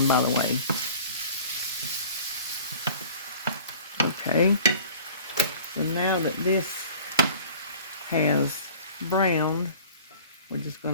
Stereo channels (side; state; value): both; inverted; correlation -0.46